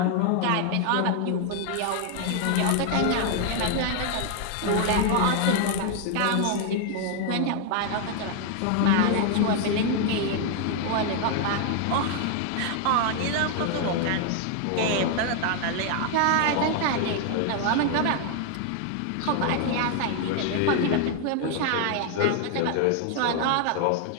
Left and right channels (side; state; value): both; different; correlation 0.00